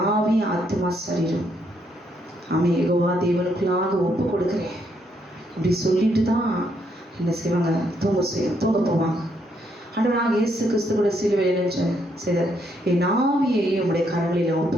ஆவி ஆத்மா சரீரம் ஆமே யெகோவா தேவனுக்குள்ளாக ஒப்பு கொடுக்குறேன் இப்படி சொல்லிட்டு தான் என்ன செய்வாங்க, தூங்க போவாங்க. ஆண்டவராக இயேசு கிறிஸ்து கூட சிலுவையில் நின்ற செய்தார், என் ஆவியை உடைய கரங்களில் ஒப்பு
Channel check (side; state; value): both; normal; correlation 0.74